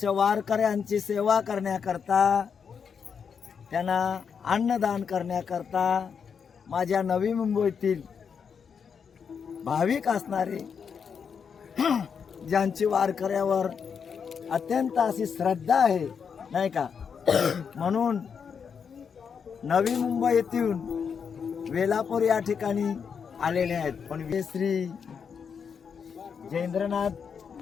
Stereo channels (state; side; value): quieter; right; 6.6 dB